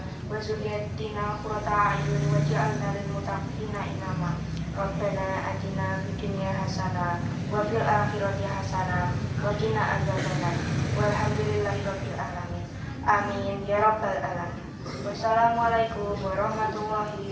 wa dzurriyyatina qurrata a'yun waj'alna lil muttaqina imama. Rabbana atina fid dunya hasanah wa fil akhirati hasanah wa qina adzabannar. Walhamdulillahi rabbil alamin. Amin ya rabbal alamin. Wassalamualaikum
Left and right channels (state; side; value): identical; both; correlation 1.00